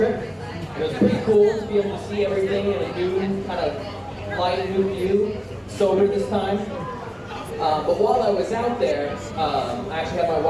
It was pretty cool to be able to see everything in a new kind of light, new view, sober this time. But while I was out there, I actually had my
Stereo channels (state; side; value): identical; both; correlation 1.00